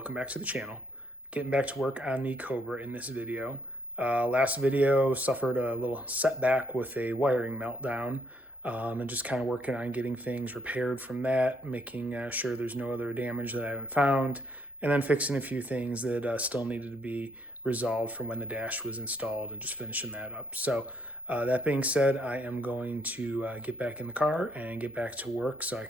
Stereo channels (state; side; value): normal; both; correlation 0.71